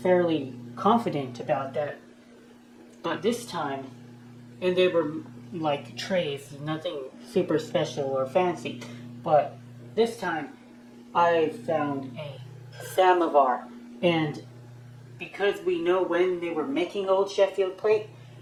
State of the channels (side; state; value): both; identical; correlation 1.00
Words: fairly confident about that. But this time, and they were like trays, nothing super special or fancy. But this time, I found a Samovar, and because we know when they were making old Sheffield Plate,